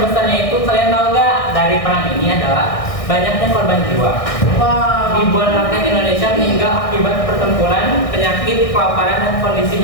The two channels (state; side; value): late; right; 1.6 ms